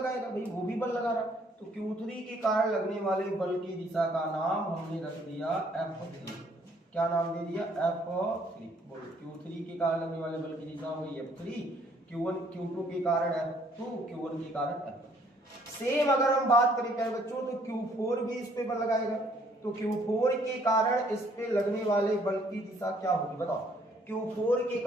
भाई वो भी बल लगा रहा, तो Q3 के कारण लगने वाले बल की दिशा का नाम हमने रख दिया F3। क्या नाम दे दिया, F3। बोलो, Q3 के कारण लगने वाले बल की दिशा हुई F3, Q2 के कारण F2, Q1 के कारण F1। सेम अगर हम बात करें प्यारे बच्चों तो Q4 भी इस पे बल लगाएगा, तो Q4 के कारण इस पे लगने वाले बल की दिशा क्या होगी बताओ। Q4 के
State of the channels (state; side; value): normal; both; correlation 0.64